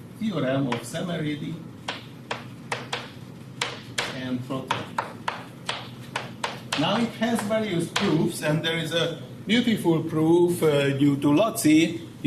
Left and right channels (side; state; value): both; identical; correlation 1.00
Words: theorem of Semeridi and Trotter. Now it has various proofs, and there is a beautiful proof due to Lotzi